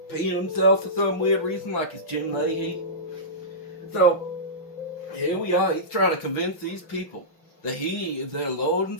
peeing himself for some weird reason like it's Jim Leahy. So, here we are. He's trying to convince these people that he is their Lord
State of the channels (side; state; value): right; late; 5.9 ms